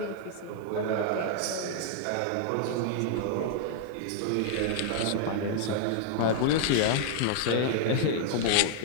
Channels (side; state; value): both; different; correlation -0.01